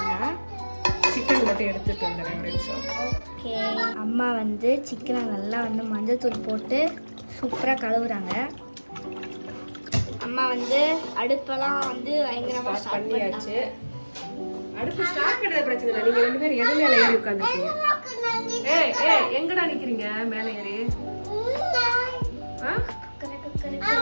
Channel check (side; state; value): both; inverted; correlation -1.00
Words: சிக்கன் மட்டும் எடுத்துட்டு வந்துடுறேன் ஒரு நிமிஷம். ஓகே, அம்மா வந்து சிக்கனை நல்லா வந்து மஞ்சள் தூள் போட்டு சூப்பராக கழுவுறாங்க. அம்மா வந்து அடுப்பெல்லாம் வந்து பயங்கரமாக ஸ்டார்ட் பண்ணியாச்சு. அடுப்பு ஸ்டார்ட் பண்ணுறது பிரச்சனை இல்லை. நீங்கள் ரெண்டு பேரும் எது மேலே ஏறி உட்காந்துருக்கீங்க? ஏய் ஏய் எங்கடா நிக்கிறீங்க மேல ஏறி? ஆ?